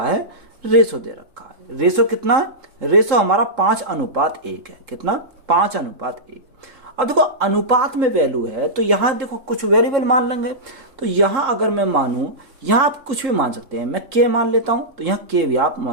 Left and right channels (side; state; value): left; late; 3.8 ms